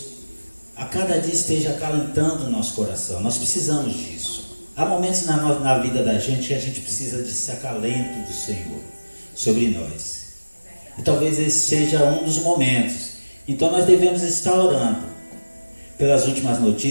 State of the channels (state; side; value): inverted; both; correlation -1.00